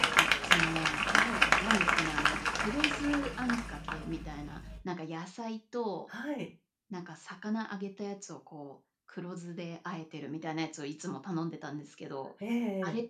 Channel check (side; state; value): both; identical; correlation 1.00